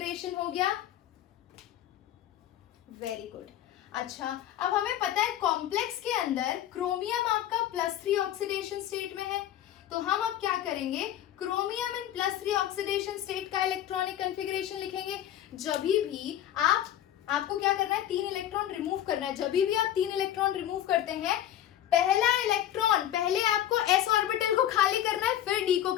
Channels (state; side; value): quieter; right; 11.7 dB